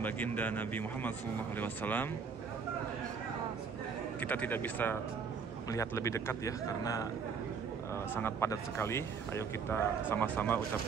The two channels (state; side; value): quieter; left; 5.9 dB